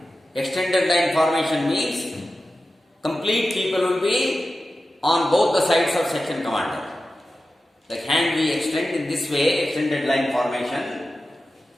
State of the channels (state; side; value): normal; both; correlation 0.93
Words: Extended line formation means complete people will be on both the sides of section commander. The hand we extend in this way, extended line formation.